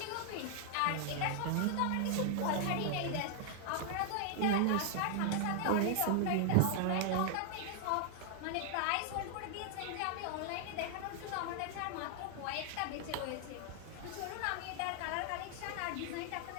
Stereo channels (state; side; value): different; both; correlation 0.00